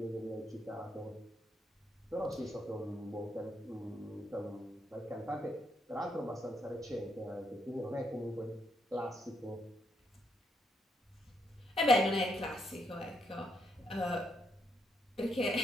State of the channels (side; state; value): both; normal; correlation 0.77